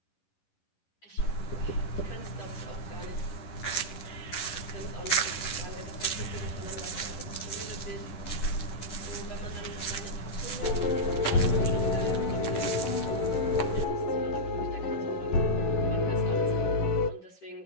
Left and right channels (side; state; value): right; late; 11 ms